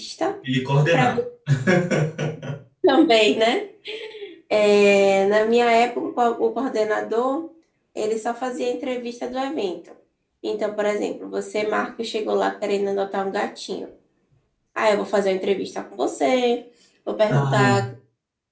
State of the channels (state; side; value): identical; both; correlation 1.00